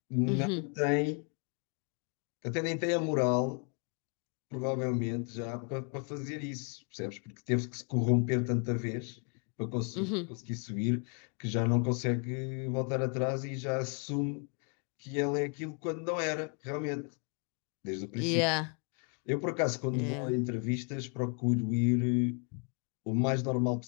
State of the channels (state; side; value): quieter; right; 39.3 dB